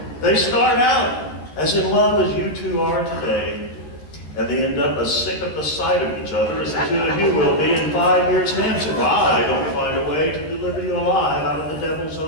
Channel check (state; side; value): late; right; 13 ms